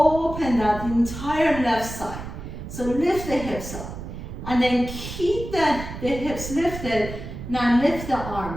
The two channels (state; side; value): noise; right; rumble, 9 dB below the sound